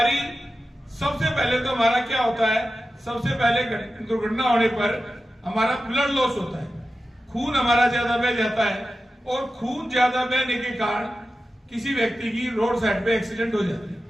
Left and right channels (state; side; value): normal; both; correlation 0.92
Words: सबसे पहले तो हमारा क्या होता है, सबसे पहले दुर्घटना होने पर हमारा ब्लड लॉस होता है, खून हमारा ज्यादा बह जाता है और खून ज्यादा बहने के कारण किसी व्यक्ति की रोड साइड पे एक्सीडेंट हो जाती है।